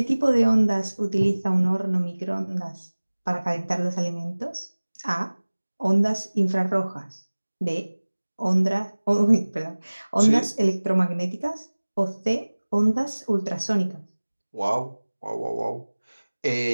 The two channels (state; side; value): inverted; both; correlation -1.00